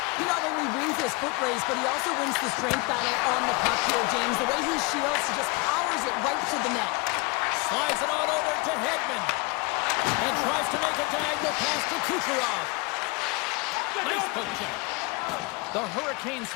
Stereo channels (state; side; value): quieter; right; 27.6 dB